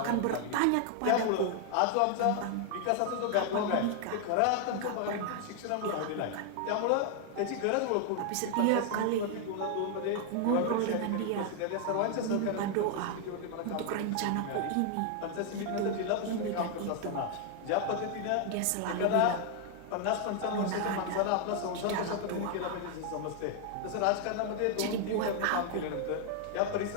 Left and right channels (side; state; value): both; different; correlation 0.00